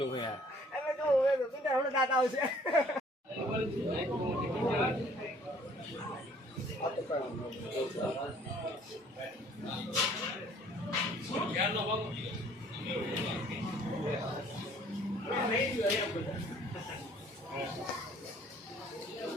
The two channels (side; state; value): both; normal; correlation 0.57